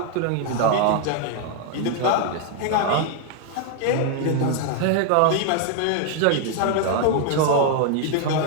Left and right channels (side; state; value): both; different; correlation 0.00